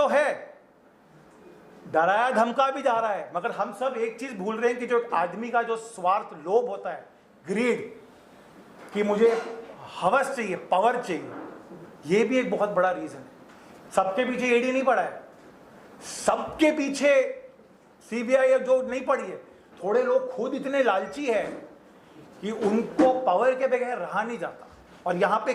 है, डराया धमका भी जा रहा है, मगर हम सब एक चीज भूल रहे हैं कि जो आदमी का जो स्वार्थ, लोभ होता है, ग्रीड, कि मुझे हवस चाहिए, पावर चाहिए, ये भी एक बहुत बड़ा रीजन है। सबके पीछे ईडी नहीं पड़ा है, सबके पीछे सीबीआई जो नहीं पड़ी है। थोड़े लोग खुद इतने लालची है कि उनको पावर के बगैर रहा नहीं जाता। और यहां पे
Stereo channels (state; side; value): identical; both; correlation 1.00